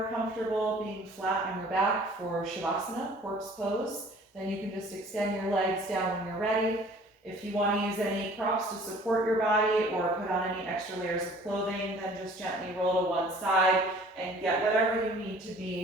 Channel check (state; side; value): normal; both; correlation 0.51